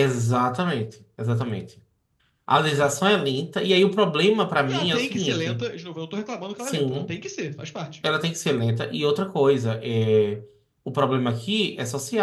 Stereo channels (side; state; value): both; identical; correlation 1.00